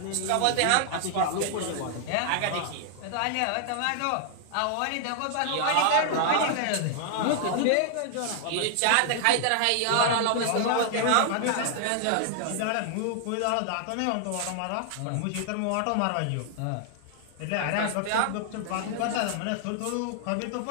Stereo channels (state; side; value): different; both; correlation 0.00